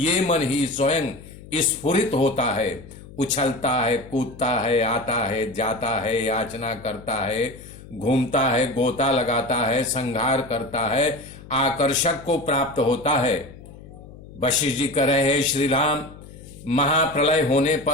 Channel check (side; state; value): left; noise; hum, 18 dB below the sound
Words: मन ही स्वयं स्फुरित होता है, उछलता है, कूदता है, आता है, जाता है, याचना करता है, घूमता है, गोता लगाता है, संहार करता है, आकर्षक को प्राप्त होता है। वशिष्ठ जी कह रहे हैं श्री राम, महाप्रलय होने